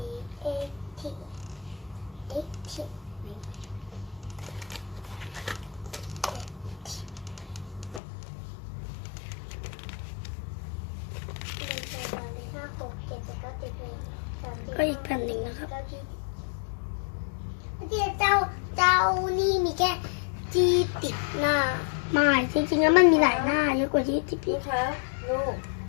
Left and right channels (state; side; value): drops out; right; at 8.0 s